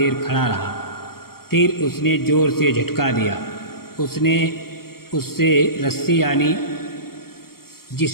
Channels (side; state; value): right; late; 0.94 ms